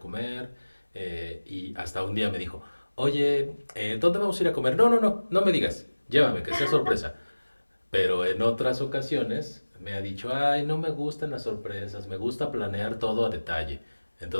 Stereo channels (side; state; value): both; inverted; correlation -1.00